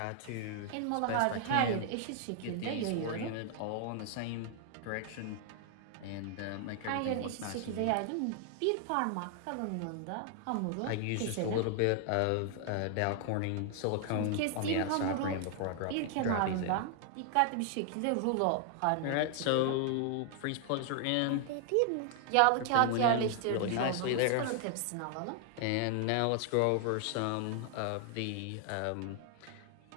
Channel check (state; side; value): different; both; correlation 0.00